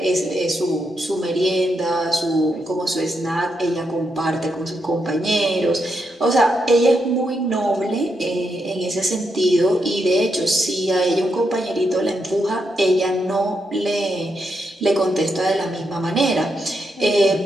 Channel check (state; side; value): normal; both; correlation 0.82